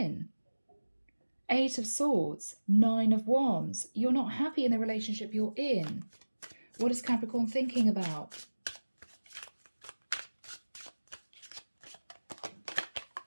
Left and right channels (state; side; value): inverted; both; correlation -1.00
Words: Eight of Swords, Nine of Wands. You're not happy in the relationship you're in. What is Capricorn thinking about?